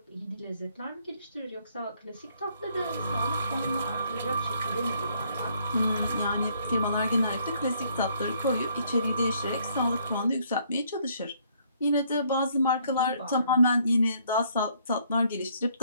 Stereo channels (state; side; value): inverted; both; correlation -0.66